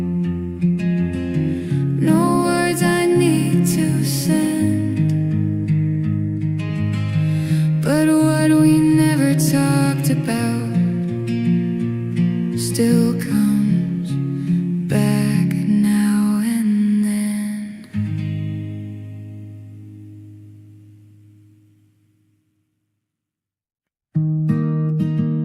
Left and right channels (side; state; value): both; identical; correlation 1.00